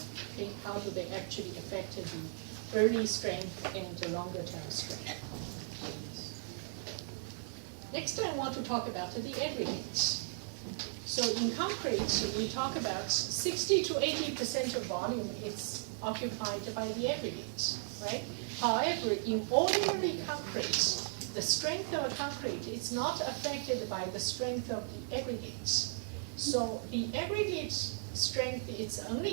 Okay? How do they actually affect the early strength and the longer term strength? Next, I want to talk about the aggregates. So in concrete, we talk about 60 to 80% of volume is occupied by the aggregates, right? However, in ordinary concrete, the strength of a concrete is not affected by the strength of the aggregates. So the aggregate strength is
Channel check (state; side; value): silent; left; digital silence